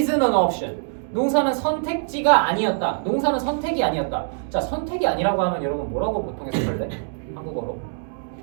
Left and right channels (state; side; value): silent; left; digital silence